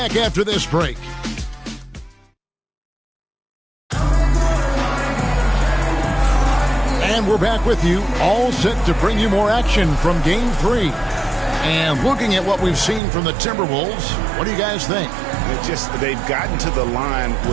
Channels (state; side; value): drops out; left; at 13.0 s